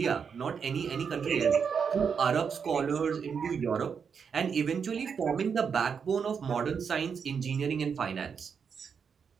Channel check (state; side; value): quieter; left; 6.5 dB